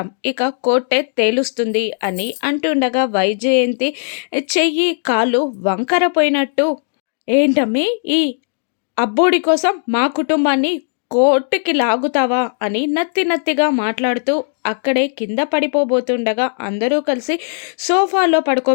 ఇక కోర్టే తేలుస్తుంది అని అంటుండగా వైజయంతి చెయ్యి కాలు వంకర పోయినట్టు, ఏంటమ్మి ఈ అబ్బోడి కోసం మా కుటుంబాన్ని కోర్టుకి లాగుతావా అని నత్తిగా మాట్లాడుతూ అక్కడే కింద పడిపోబోతుండగా అందరూ కలిసి సోఫాలో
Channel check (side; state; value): right; silent; digital silence